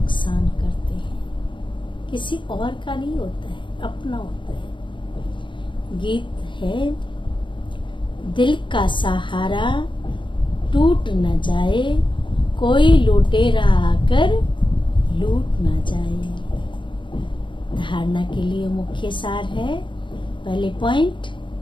करते हैं, किसी और का नहीं होता है, अपना होता है। गीत है, दिल का सहारा टूट न जाए, कोई लुटेरा आकर लूट न जाए। धारणा के लिए मुख्य सार है, पहले पॉइंट,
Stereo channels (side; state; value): right; late; 0.23 ms